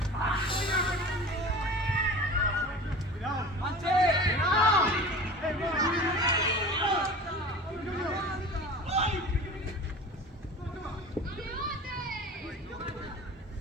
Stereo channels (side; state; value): both; normal; correlation 0.37